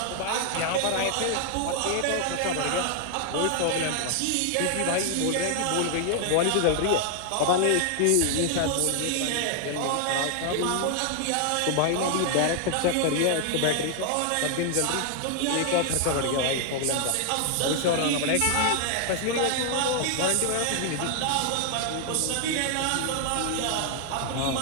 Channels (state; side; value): different; both; correlation 0.00